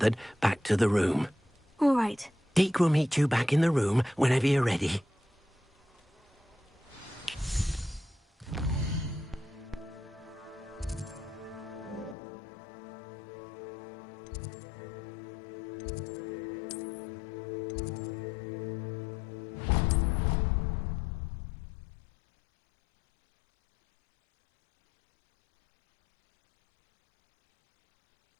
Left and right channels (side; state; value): right; drops out; at 12.2 s